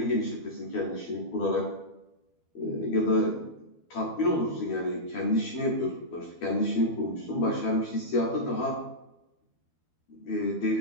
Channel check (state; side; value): late; right; 12 ms